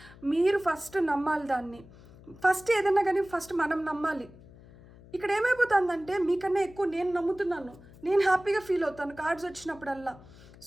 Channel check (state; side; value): noise; left; hum, 21 dB below the sound